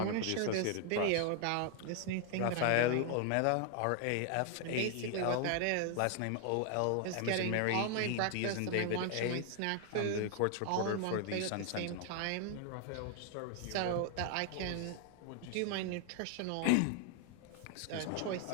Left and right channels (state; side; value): different; both; correlation 0.00